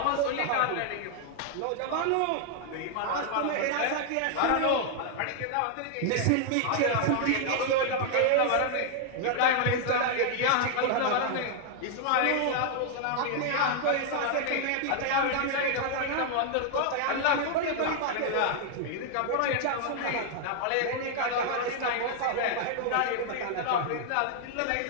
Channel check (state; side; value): different; both; correlation 0.00